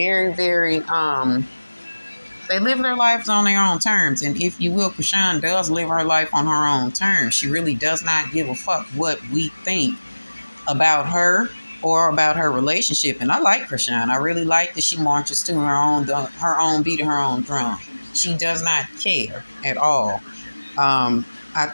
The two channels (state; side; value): inverted; both; correlation -1.00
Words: very, they live their lives on their own terms. And if you will, Chrisean does live her life on her own terms. She really does not give a fuck what we think about her or about her relationship. And I like Chrisean. I really like that she marches to her own beat of her own drum. She does not care at all. I